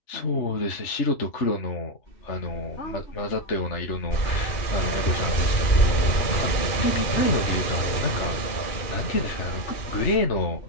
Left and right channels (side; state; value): right; late; 2.4 ms